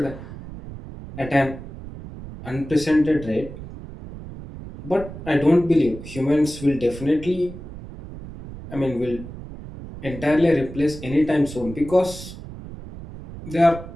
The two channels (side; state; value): right; noise; rumble, 13 dB below the sound